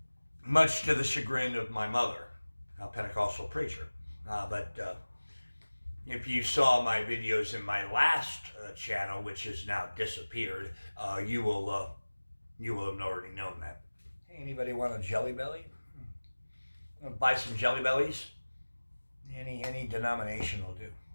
Much to the chagrin of my mother, a Pentecostal preacher. But if you saw my videos in my last channel, which has now disappeared, you will have already known that. Hey, anybody want a Jelly Belly? Buy some Jelly Bellies? Any denomination will do.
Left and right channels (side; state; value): both; inverted; correlation -1.00